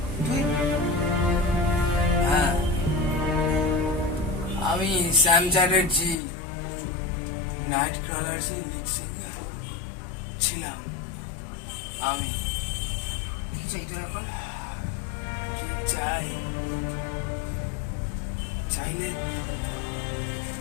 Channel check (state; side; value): drops out; right; at 6.2 s